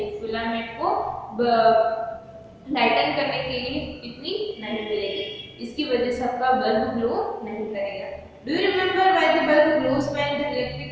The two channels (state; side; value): identical; both; correlation 1.00